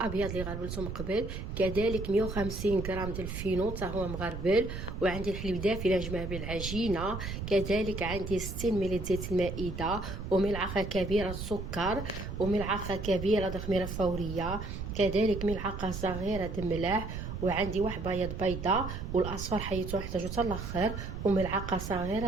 اللي غربلته من قبل، كذلك 150 غرام ديال الفينو حتى هو مغربل، وعندي الحليب دافي لنجمع به العجينه، كذلك عندي 60 ملل زيت المائده، وملعقه كبيره سكر، وملعقه كبيره خميره فوريه، كذلك ملعقه صغيره د ملح، وعندي واحد بيض بيضه، والاصفر حيتو نحتاجو حتى الاخر، وملعقه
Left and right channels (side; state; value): right; noise; rumble, 6 dB below the sound